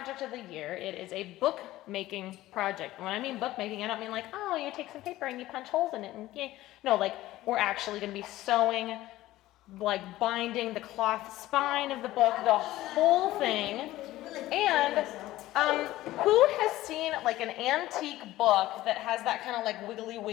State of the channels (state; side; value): quieter; right; 16.1 dB